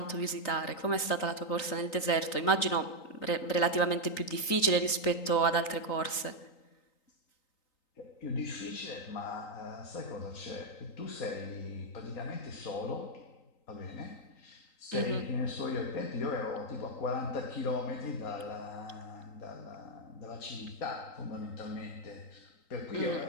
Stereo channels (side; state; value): right; late; 3.9 ms